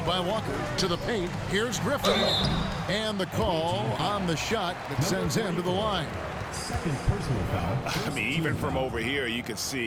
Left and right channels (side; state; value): both; identical; correlation 1.00